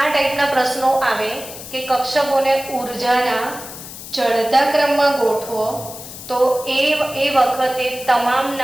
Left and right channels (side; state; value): left; noise; hiss, 13 dB below the sound